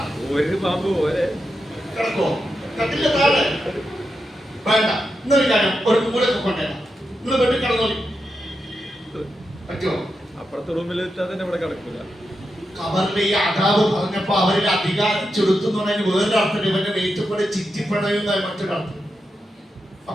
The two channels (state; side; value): normal; both; correlation 0.87